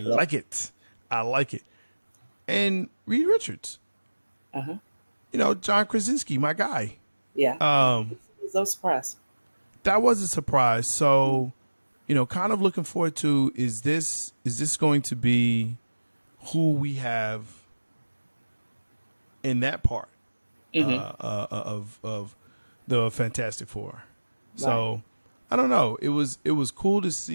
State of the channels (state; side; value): inverted; both; correlation -1.00